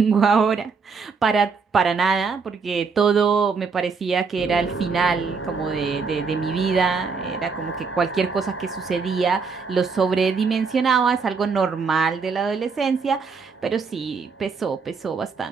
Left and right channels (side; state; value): left; quieter; 5.1 dB